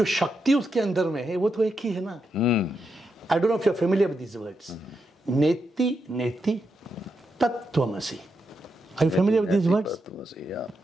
शक्ति उसके अंदर में है वो तो एक ही है ना. I don't know if you are familiar with these words. Neti neti tattvamasi. Are you familiar with these words?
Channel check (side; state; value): both; normal; correlation 0.84